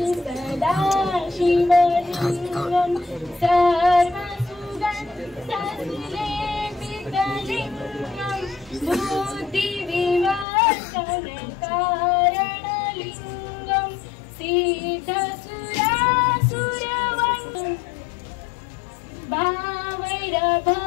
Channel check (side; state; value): right; drops out; at 10.5 s